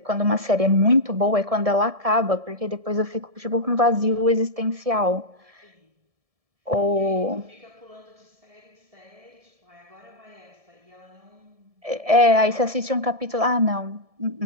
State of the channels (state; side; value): late; left; 1.7 ms